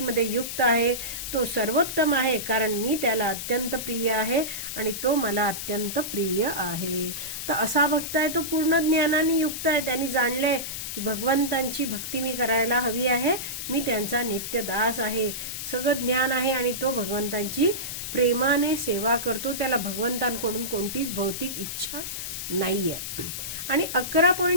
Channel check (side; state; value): left; noise; hiss, 6 dB below the sound